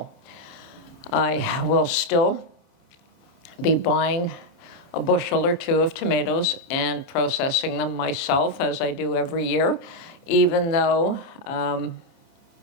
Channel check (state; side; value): late; right; 30 ms